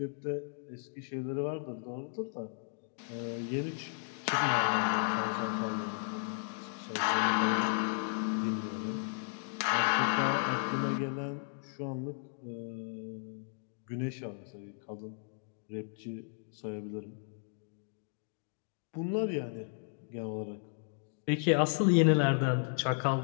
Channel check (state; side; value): silent; right; digital silence